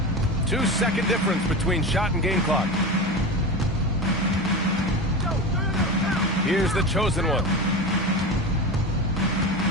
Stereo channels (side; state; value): both; normal; correlation 0.25